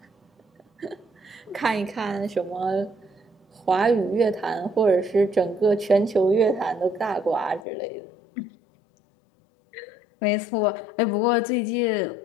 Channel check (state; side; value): drops out; right; at 7.6 s